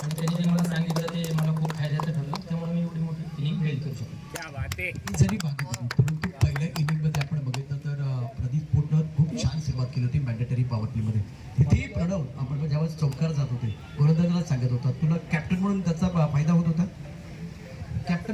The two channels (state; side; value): identical; both; correlation 1.00